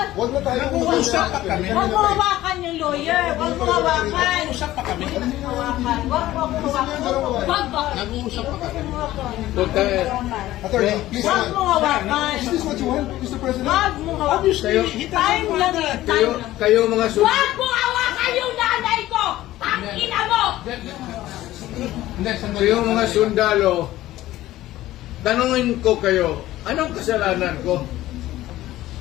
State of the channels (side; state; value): right; quieter; 15.4 dB